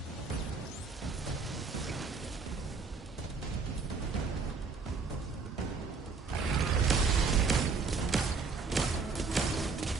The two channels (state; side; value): quieter; left; 4.7 dB